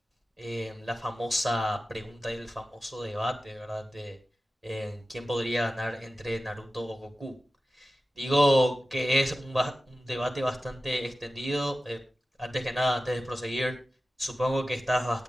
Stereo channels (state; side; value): normal; both; correlation 0.95